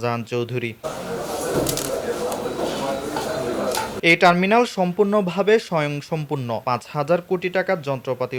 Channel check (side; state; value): both; identical; correlation 1.00